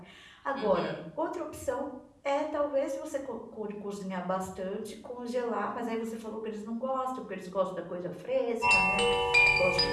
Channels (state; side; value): identical; both; correlation 1.00